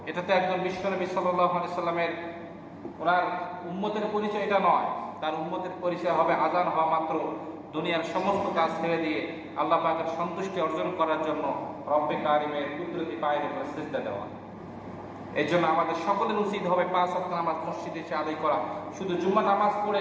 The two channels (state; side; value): identical; both; correlation 1.00